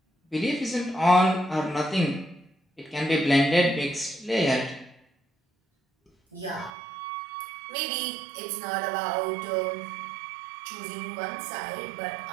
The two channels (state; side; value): drops out; left; at 6.7 s